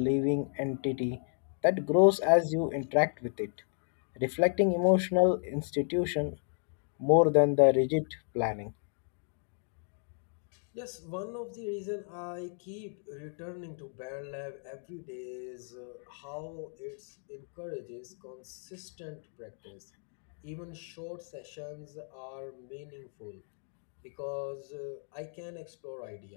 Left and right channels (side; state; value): right; silent; 56 dB below the other